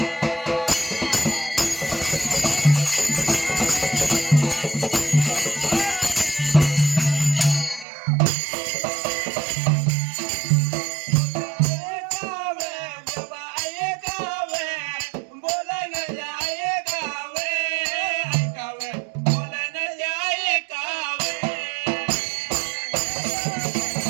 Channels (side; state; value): left; drops out; at 7.9 s